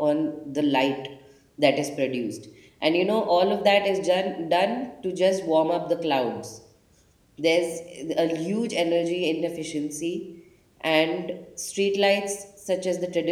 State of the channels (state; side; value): identical; both; correlation 1.00